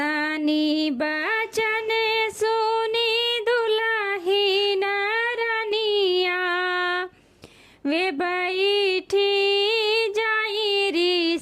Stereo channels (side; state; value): both; identical; correlation 1.00